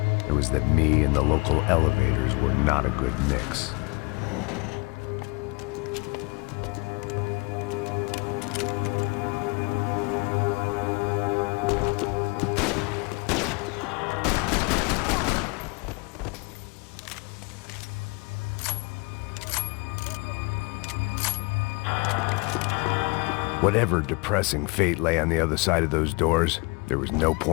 it was that me and the local elevators were not a good mix. Whatever depressing fate lay on the other side of those doors, there was no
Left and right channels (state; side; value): quieter; right; 28.8 dB